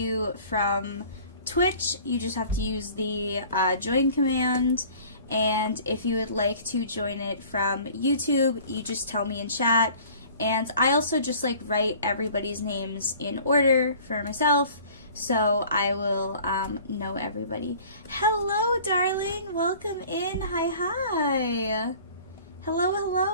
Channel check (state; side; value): inverted; both; correlation -0.48